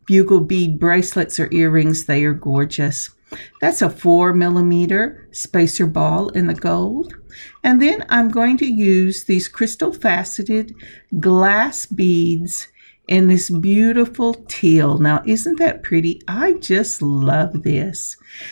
bugle bead bracelets or earrings. They are gorgeous. That's a 4 millimeter spacer ball in the gold. And then I'm going to use these crystal faceted glass beads in this beautiful teal. Now, isn't that pretty? I just love this.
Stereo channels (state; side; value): inverted; both; correlation -1.00